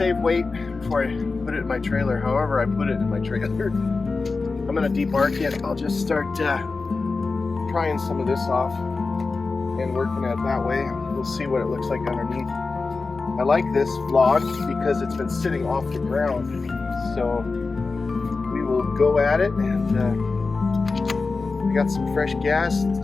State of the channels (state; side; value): quieter; right; 4.0 dB